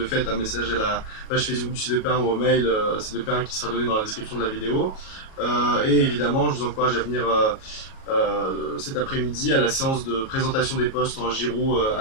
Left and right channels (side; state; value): right; late; 37 ms